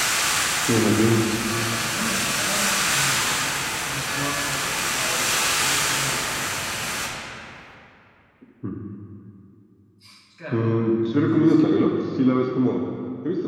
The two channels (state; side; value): identical; both; correlation 1.00